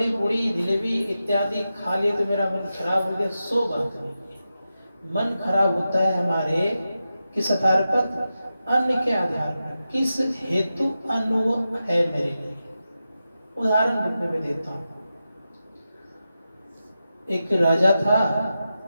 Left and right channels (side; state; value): both; inverted; correlation -0.90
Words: पूड़ी जलेबी इत्यादि खा लिए तो मेरा मन खराब हो गया, सो बात नहीं है। मन खराब होता है हमारे किस आधार पर? अन्न के आधार पर। किस हेतु अन्न वो है मेरे लिए? उदाहरण रूप में देता हूं। एक राजा था,